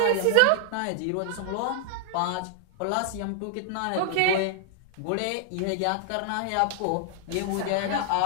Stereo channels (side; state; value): both; different; correlation -0.01